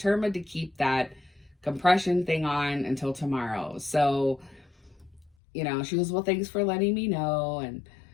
to keep that compression thing on until tomorrow. So, she goes, well, thanks for letting me know. And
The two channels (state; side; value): drops out; right; at 5.3 s